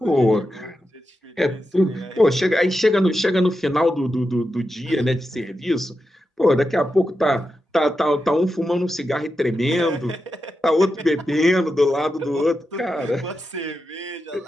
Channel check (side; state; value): both; normal; correlation 0.89